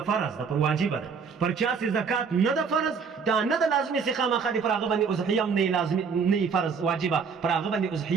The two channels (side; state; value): left; quieter; 5.7 dB